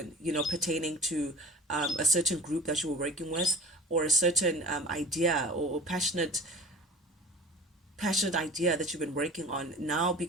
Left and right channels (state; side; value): normal; both; correlation 0.39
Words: pertaining to a certain group that you were working with, or a certain idea, or passionate idea that you've been working on. Now,